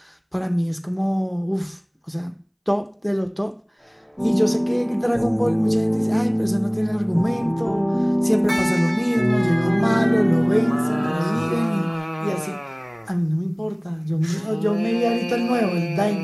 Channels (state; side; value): identical; both; correlation 1.00